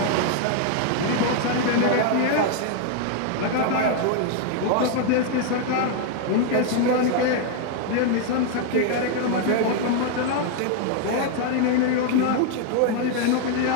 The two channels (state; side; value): different; both; correlation 0.00